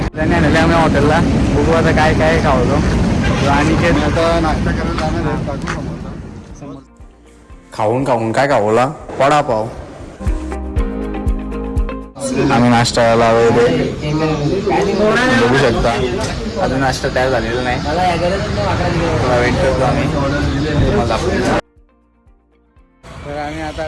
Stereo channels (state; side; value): identical; both; correlation 1.00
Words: त्याने आणले आम्ही हॉटेलला. बघू आता काय काय खावतो आणि आता नाश्ता करायला जाणार आहे. खाऊन काय खावला? वडापाव. आम्ही नाश्ता करायला बघू शकता. अजून नाश्ता तयार झालेला नाही. थोडा वेट करतो आम्ही. तर आम्ही आता